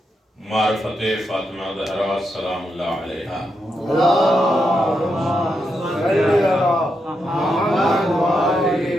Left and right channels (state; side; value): normal; both; correlation 0.83